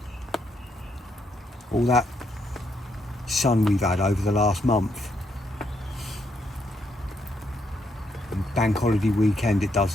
All that sun we've had over the last month. And bank holiday weekend it does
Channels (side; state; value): both; normal; correlation 0.76